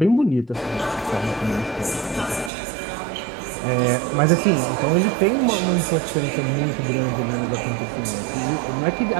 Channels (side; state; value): left; drops out; at 2.5 s